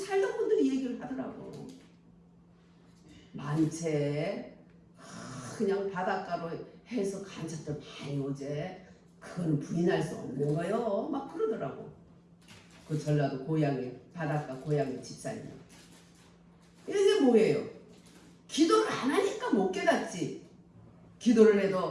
분들이 얘기를 하더라고. 많채 그냥 바닷가로 해서 간첩들 많이 오제. 그건 부인할 수 없는 거요. 막 그러더라고. 그 전라도 고향에 바닷가 고향에 집사님. 이게 뭐예요? 기도를 안 하니까 못 깨닫지. 기도를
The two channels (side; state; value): both; identical; correlation 1.00